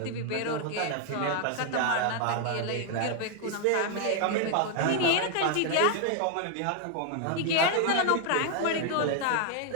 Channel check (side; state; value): both; different; correlation 0.00